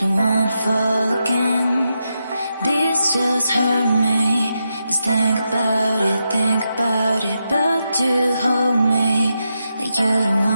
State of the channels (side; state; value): both; inverted; correlation -0.86